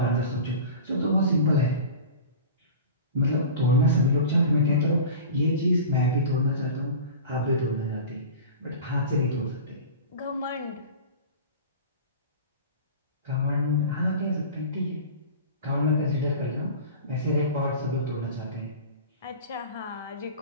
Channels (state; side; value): inverted; both; correlation -0.35